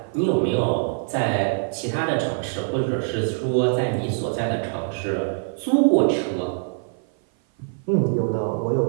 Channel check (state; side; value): silent; left; 56 dB below the other